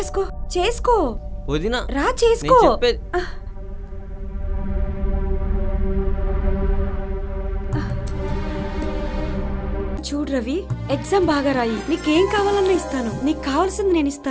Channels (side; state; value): both; identical; correlation 1.00